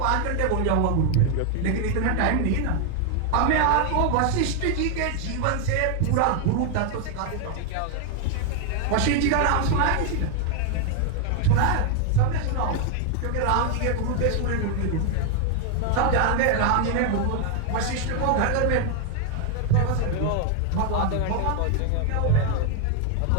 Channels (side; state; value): both; different; correlation 0.00